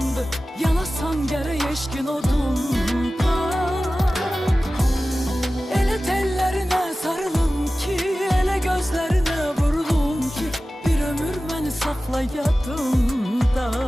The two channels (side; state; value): both; normal; correlation 0.96